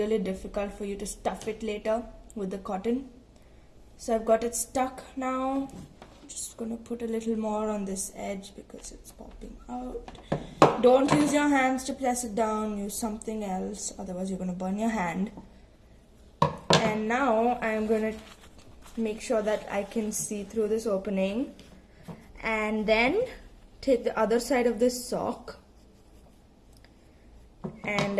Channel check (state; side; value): identical; both; correlation 1.00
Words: difficult for you to stuff it later with the cotton. So I've got it stuck now. I'm just going to put a little more on this edge because it's popping out. Don't use your hands to press it down. Use something else, otherwise you're going to burn your hand. And now I'm going to make sure that I can see through this opening, and then take the other side of this sock and